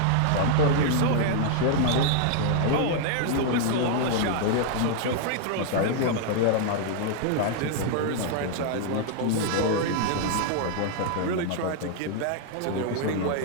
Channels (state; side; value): different; both; correlation 0.00